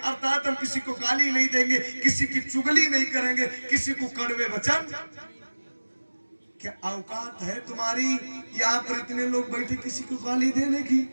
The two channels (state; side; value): inverted; both; correlation -1.00